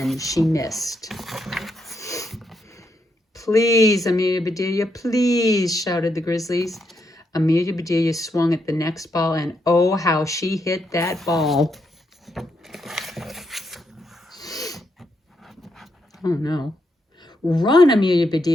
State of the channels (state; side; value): normal; both; correlation 0.80